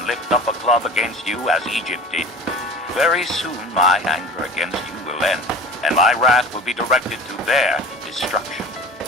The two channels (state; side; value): normal; both; correlation 0.39